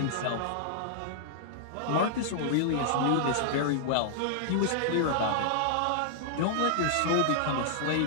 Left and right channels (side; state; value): both; different; correlation -0.01